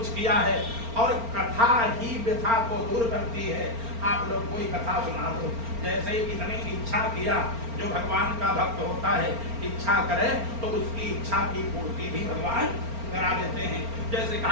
किया है, और कथा ही व्यथा को दूर करती है। आप लोग कोई कथा सुना दो। जैसे इतनी इच्छा किया, जो भगवान का भक्त होता है इच्छा करे तो उसकी इच्छा की पूर्ति भी भगवान करा देते हैं। जैसे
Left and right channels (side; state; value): left; late; 4.4 ms